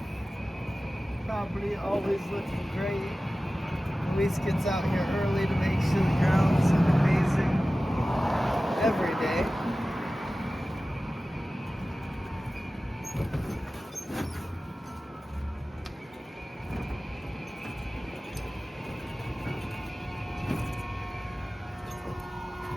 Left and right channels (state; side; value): normal; both; correlation 0.96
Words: Property always looking great. Luis gets out here early to make sure the grounds look amazing every day.